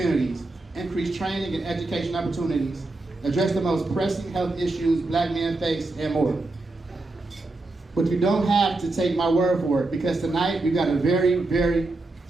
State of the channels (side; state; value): left; quieter; 3.0 dB